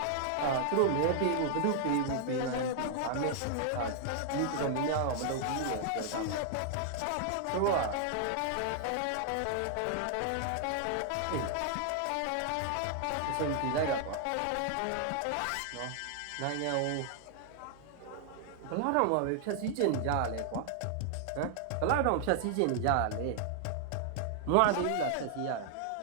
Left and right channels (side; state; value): both; different; correlation 0.00